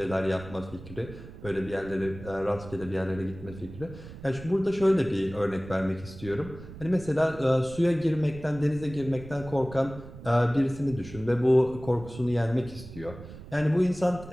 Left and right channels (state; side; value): noise; right; rumble, 15 dB below the sound